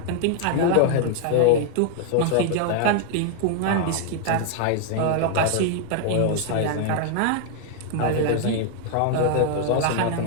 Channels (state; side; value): different; both; correlation 0.00